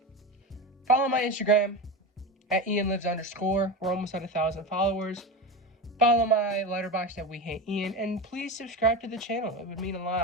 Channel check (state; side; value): normal; both; correlation 0.22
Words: Follow my Instagram at @IanLives_. We're almost at 1,000 followers. Follow my Letterboxd at wehateian, and please subscribe to the channel. It would mean a